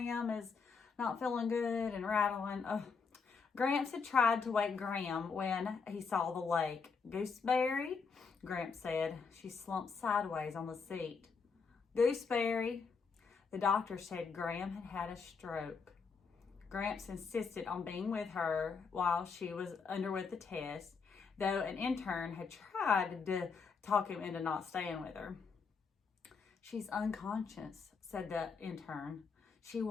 is not feeling good and rattling. Gramps had tried to wake Graham when he saw the lake. Gooseberry, Gramps said. She slumped sideways on the seat. Gooseberry. The doctor said Graham had had a stroke. Gramps insisted on being with her while she was underwent the test, though an intern had tried to talk him into not staying with her. She's unconscious, said the intern. She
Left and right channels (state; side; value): quieter; right; 5.3 dB